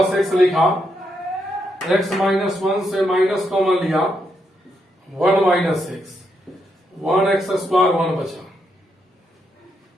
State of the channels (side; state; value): both; normal; correlation 0.80